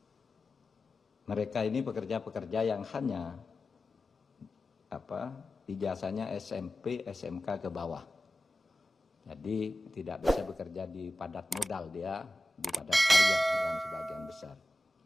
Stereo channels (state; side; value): normal; both; correlation 0.95